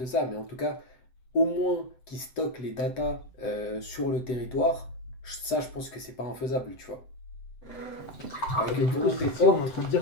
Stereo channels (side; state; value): right; late; 7.9 ms